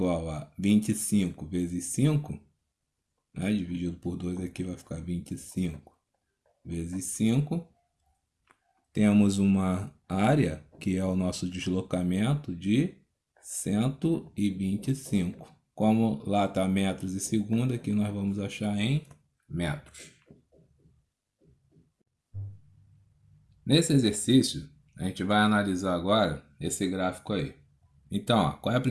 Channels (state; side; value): identical; both; correlation 1.00